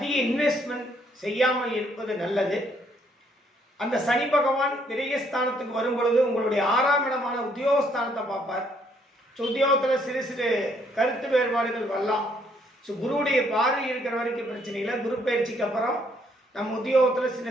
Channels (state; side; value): normal; both; correlation 0.68